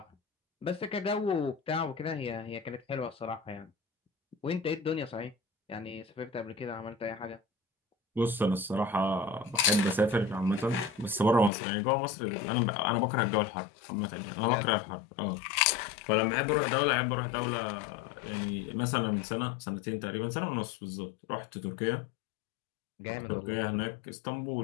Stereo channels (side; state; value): right; drops out; at 11.5 s